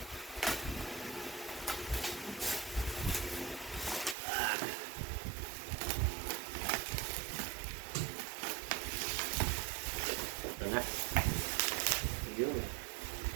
Ito na. Yun.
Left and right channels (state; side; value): drops out; left; at 4.2 s